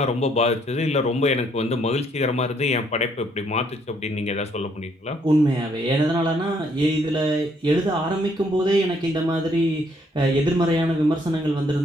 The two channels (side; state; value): both; normal; correlation 0.68